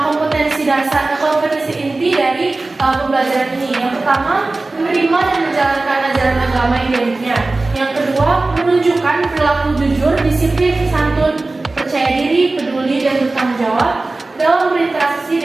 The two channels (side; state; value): left; quieter; 3.2 dB